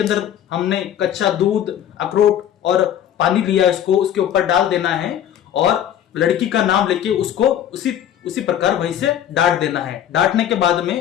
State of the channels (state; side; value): quieter; right; 10.4 dB